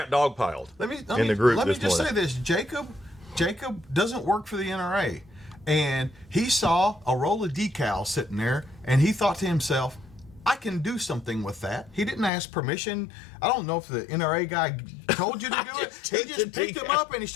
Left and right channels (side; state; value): right; drops out; at 12.3 s